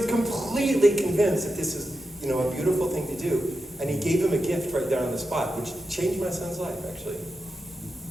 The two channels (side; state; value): both; normal; correlation 0.89